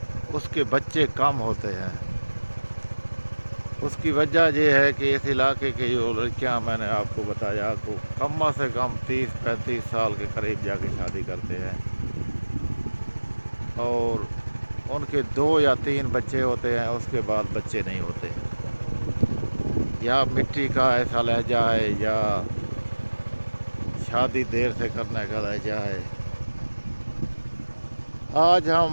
उसके बच्चे कम होते हैं। उसकी वजह यह है कि इस इलाके की जो लड़कियां, मैंने आपको बताया, तो कम से कम 30-35 साल के करीब जाके शादी करते हैं और उनके 2 या 3 बच्चे होते हैं, उसके बाद बच्चे नहीं होते। या मिट्टी का ऐसा लहजा है या शादी देर से करने का लहजा है। आज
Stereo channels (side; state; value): both; inverted; correlation -1.00